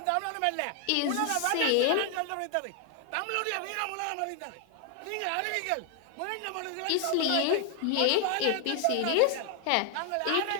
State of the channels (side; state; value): both; different; correlation 0.00